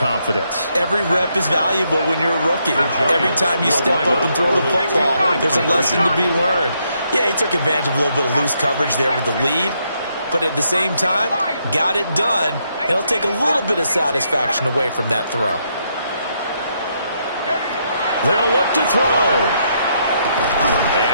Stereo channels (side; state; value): both; inverted; correlation -0.76